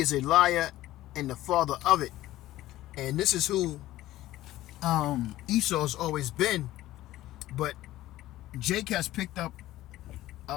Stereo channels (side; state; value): right; quieter; 15.4 dB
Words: a liar and the father of it. And this is who Esau's always been. But Jake has picked up